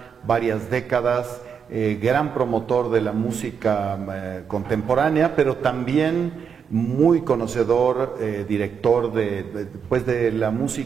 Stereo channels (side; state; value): left; quieter; 6.9 dB